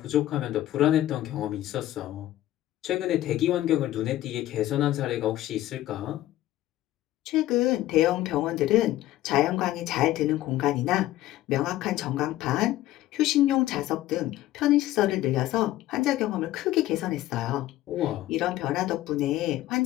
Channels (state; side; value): quieter; right; 14.8 dB